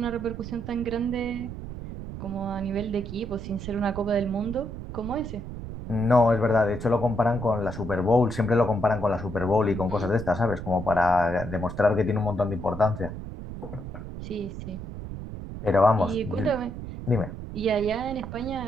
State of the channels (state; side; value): noise; right; rumble, 9 dB below the sound